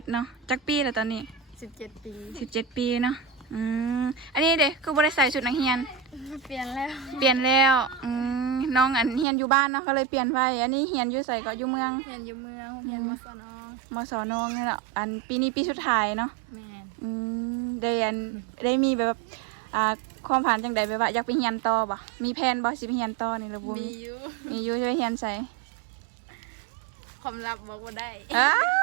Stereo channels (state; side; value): drops out; left; at 9.2 s